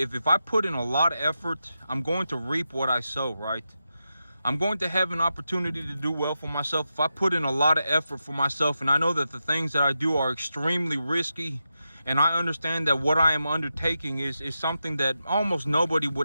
I put in a lot of effort, I'm going to reap what I sow, right? I'm going to have an opportunity to do well for myself if I put in a lot of effort for myself. And I know that the things that I do are extremely risky, and I understand that what I am undertaking is something that almost nobody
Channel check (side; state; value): both; inverted; correlation -0.88